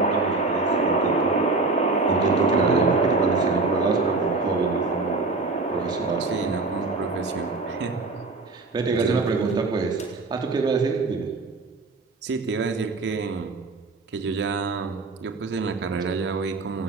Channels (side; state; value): left; quieter; 3.6 dB